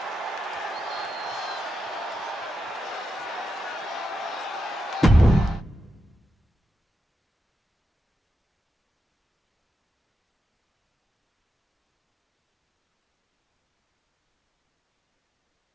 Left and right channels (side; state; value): both; normal; correlation 0.87